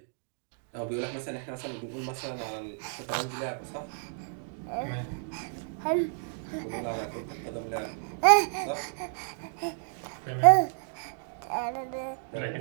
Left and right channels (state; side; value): silent; left; 57 dB below the other